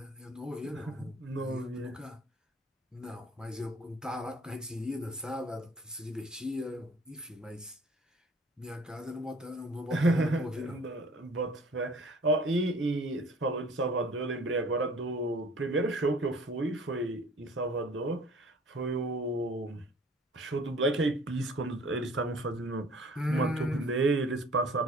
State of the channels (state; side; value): normal; both; correlation 0.50